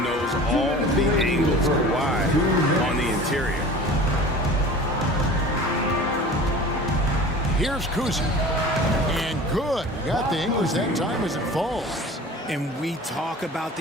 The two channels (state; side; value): normal; both; correlation 0.40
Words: knows all the angles are wide on the interior. Here's Cousy. And good. Got the English that time as it falls. And we talk about